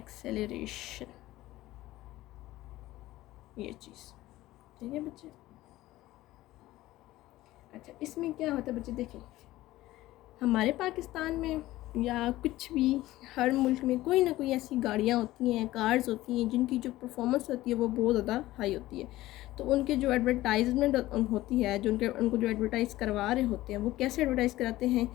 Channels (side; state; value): right; quieter; 16.6 dB